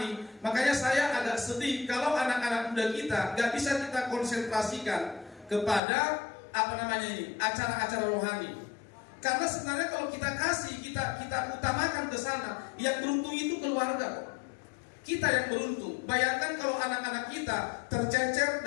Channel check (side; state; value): right; drops out; at 5.8 s